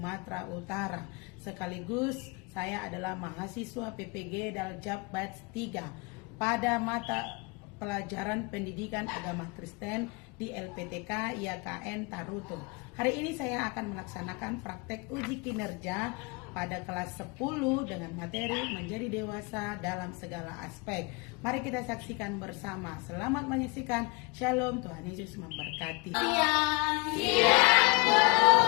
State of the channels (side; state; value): right; quieter; 27.8 dB